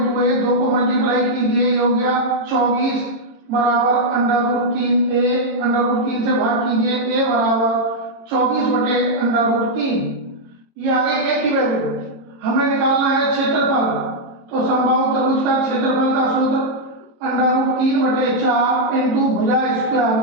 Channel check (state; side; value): late; left; 22 ms